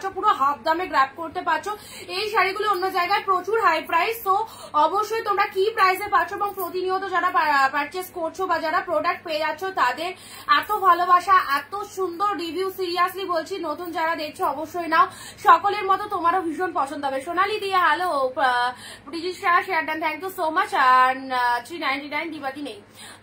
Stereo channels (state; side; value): identical; both; correlation 1.00